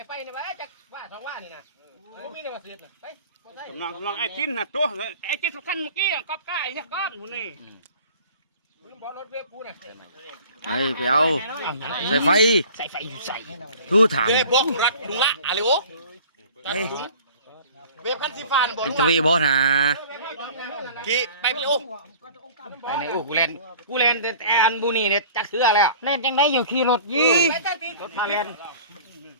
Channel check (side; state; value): both; inverted; correlation -0.46